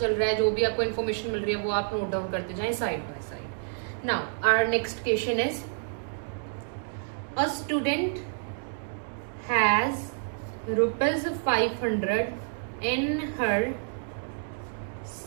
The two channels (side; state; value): left; silent; digital silence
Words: रहा है, जो भी आपको इन्फॉर्मेशन मिल रही है वो आप नोट डाउन करते जाएं side by side. Now our next question is a student has rupees 500 in her